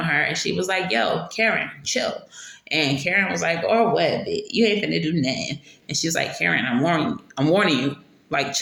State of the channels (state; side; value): identical; both; correlation 1.00